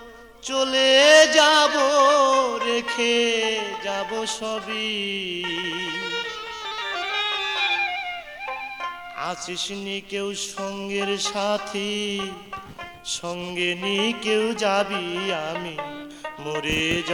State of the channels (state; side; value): identical; both; correlation 1.00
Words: চলে যাব, রেখে যাব সবই। আছিস নি কেউ সঙ্গের সাথী, সঙ্গে নি কেউ যাবি, আমি মরে